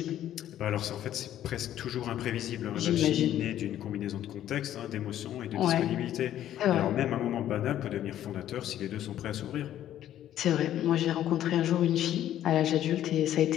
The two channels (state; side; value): quieter; right; 11.9 dB